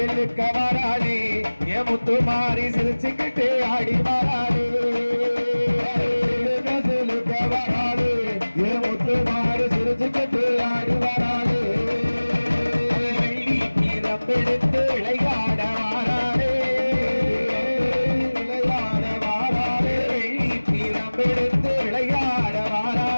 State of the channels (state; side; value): inverted; both; correlation -1.00